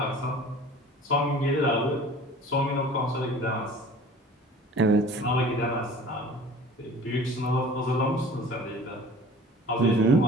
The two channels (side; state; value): both; normal; correlation 0.45